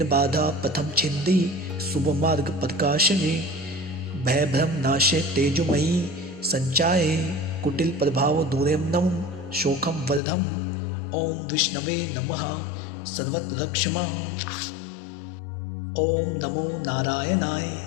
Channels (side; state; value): right; drops out; at 10.2 s